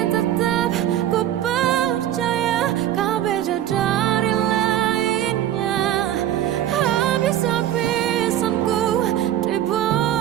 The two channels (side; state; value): left; quieter; 11.8 dB